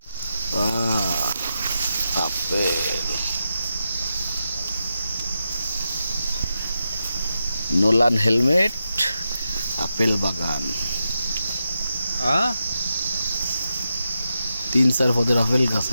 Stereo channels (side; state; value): both; inverted; correlation -0.88